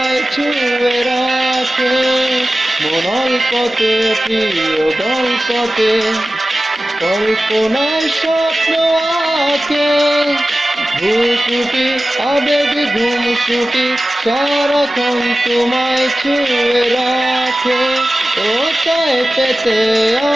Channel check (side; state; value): both; normal; correlation 0.95